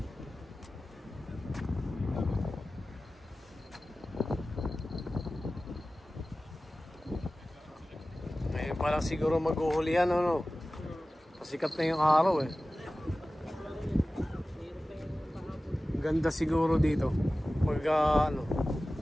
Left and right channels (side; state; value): both; normal; correlation 0.96